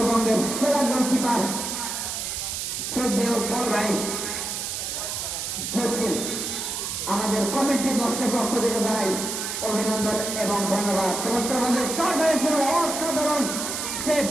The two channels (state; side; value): noise; right; hiss, 4 dB below the sound